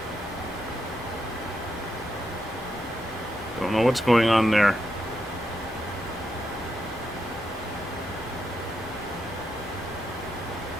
Don't know what's going on there.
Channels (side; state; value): both; normal; correlation 0.83